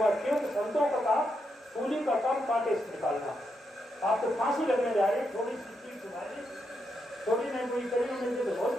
संतों का काम सूली का काम कांटे से निकालना। आप तो फांसी लगने जा रहे, थोड़ी सी चीज सुनाई, थोड़ी नहीं कोई करी मिलती तो बहुत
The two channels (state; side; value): normal; both; correlation 0.82